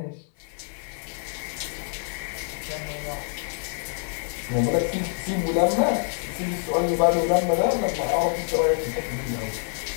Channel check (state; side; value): silent; right; digital silence